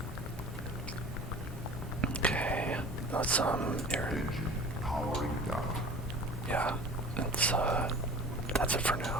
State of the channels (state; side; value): normal; both; correlation 0.41